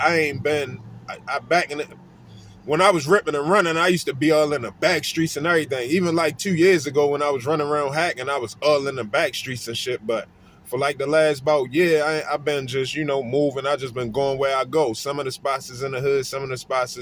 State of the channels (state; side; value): identical; both; correlation 1.00